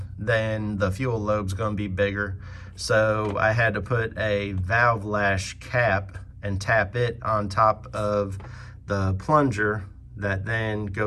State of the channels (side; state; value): both; identical; correlation 1.00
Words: then the fuel lobe's going to be bigger. So I had to put a valve lash cap and tap it on top of the plunger that then